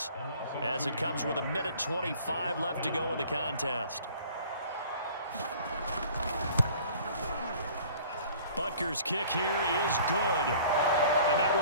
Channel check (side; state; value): both; inverted; correlation -0.49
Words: as it comes with 1:25 left to go in the contest. Butker's kick here is good. And that